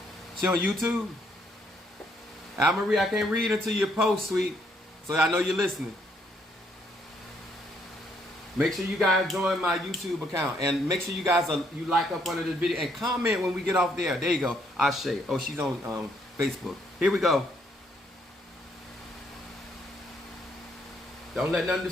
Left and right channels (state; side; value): normal; both; correlation 0.71